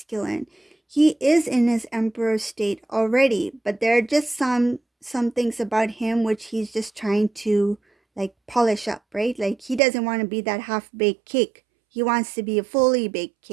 he is in his emperor state already, but there are just some things about him which he's just trying to like polish up, right? Like he doesn't want to be that half-baked cake. He wants to be a fully baked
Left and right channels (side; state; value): left; drops out; at 9.8 s